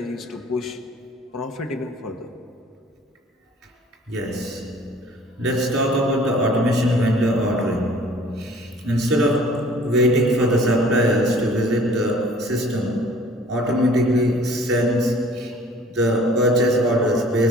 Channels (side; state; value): both; normal; correlation 0.52